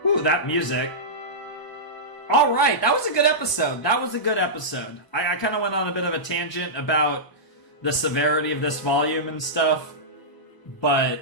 Ooh, that music. Alright, that was a good episode. I kind of went on a bit of a tangent about the severity of this volume and stuff. But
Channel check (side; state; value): right; late; 1.0 ms